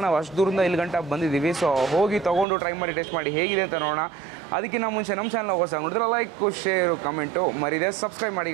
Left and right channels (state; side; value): drops out; left; at 2.5 s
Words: ನಾವು ಅಷ್ಟು ದೂರದಿಂದ ಇಲ್ಲಿ ಗಂಟೆ ಬಂದಿದ್ದೀವಿ. ಸೊ ಹೋಗಿ ತೊಗೊಂಡು ಟ್ರೈ ಮಾಡಿ ಟೇಸ್ಟ್ ಮಾಡಿ ಹೇಗಿದೆ ಅಂತ ನೋಡೋಣ. ಅದಕ್ಕಿಂತ ಮುಂಚೆ ನಮ್ಮ ಚಾನಲ್ ಹೊಸ ನೋಡಿದ್ರೆ ಲೈಕ್, ಶೇರು, ಕಮೆಂಟು ಮರಿದೆ ಸಬ್ಸ್ಕ್ರೈಬ್ ಮಾಡಿ